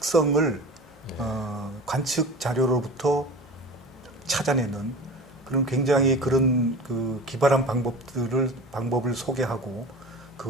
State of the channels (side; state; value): left; noise; hum, 26 dB below the sound